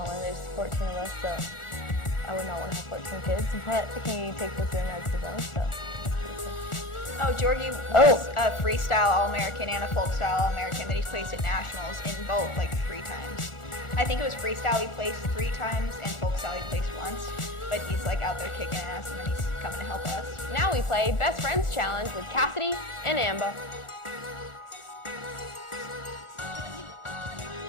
in. There's 14 of us, so I would not want to have 14 kids, but he takes us in as his own, so that's pretty cool. Oh, Jorgie was a freestyle All-American and a folk style All-American that he's placed at nationals in both like 3 times. I think it was freestyle he placed 3 times and folk style he placed once. but he's like out there kicking ass, and then he's coming to help us. Now we play Best Friends Challenge with Cassidy and Amber.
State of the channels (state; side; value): late; right; 1.4 ms